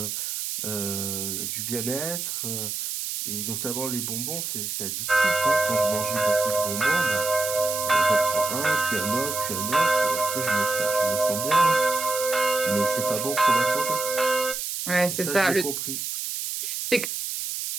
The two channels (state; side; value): noise; right; hiss, 4 dB below the sound